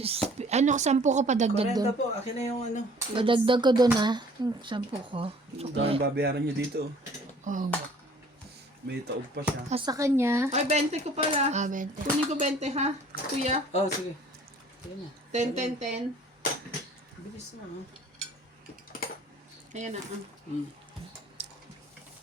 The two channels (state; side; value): normal; both; correlation 0.53